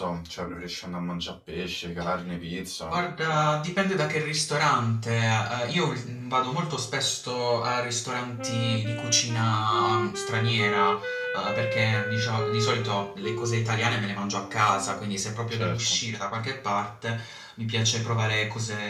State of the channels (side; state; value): both; identical; correlation 1.00